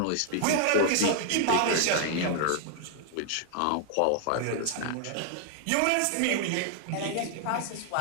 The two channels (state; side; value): different; both; correlation 0.00